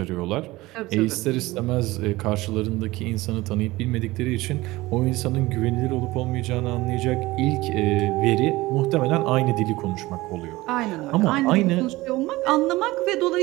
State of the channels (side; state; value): left; quieter; 19.5 dB